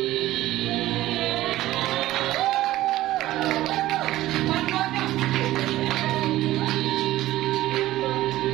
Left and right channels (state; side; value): quieter; left; 15.6 dB